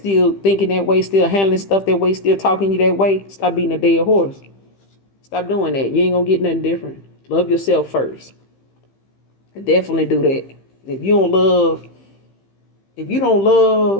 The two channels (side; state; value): right; late; 15 ms